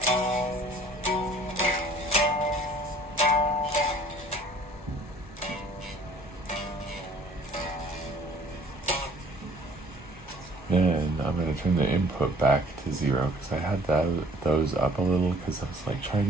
Then I'm going to turn the input back to 0 because I had those up a little because I was like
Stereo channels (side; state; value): both; normal; correlation 0.54